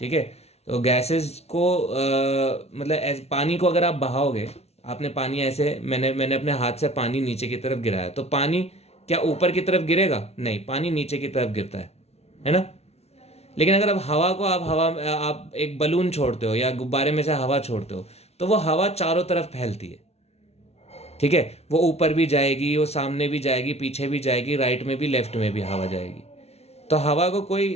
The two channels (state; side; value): late; right; 0.31 ms